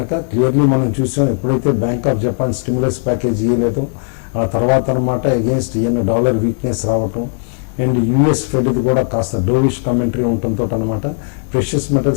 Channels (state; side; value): silent; right; 65 dB below the other